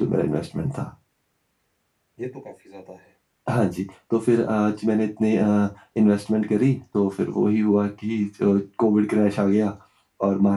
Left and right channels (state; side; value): identical; both; correlation 1.00